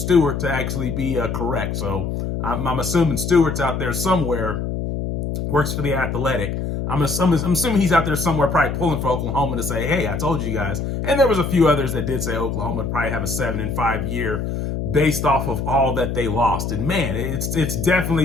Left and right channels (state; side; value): noise; left; hum, 3 dB below the sound